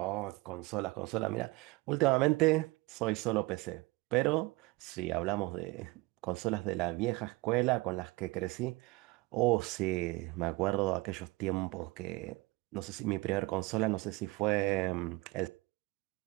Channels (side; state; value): left; quieter; 22.4 dB